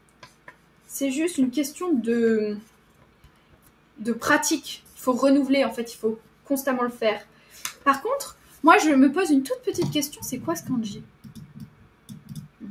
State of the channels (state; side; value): identical; both; correlation 1.00